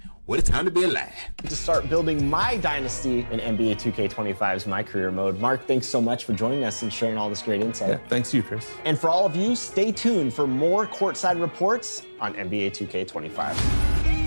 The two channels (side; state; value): both; inverted; correlation -1.00